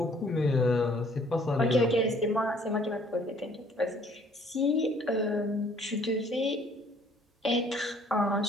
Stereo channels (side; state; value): both; normal; correlation 0.59